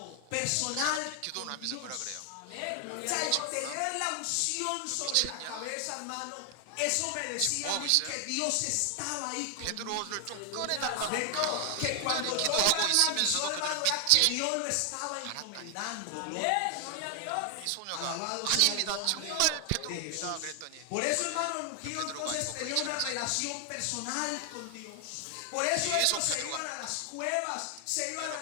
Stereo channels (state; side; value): different; both; correlation 0.00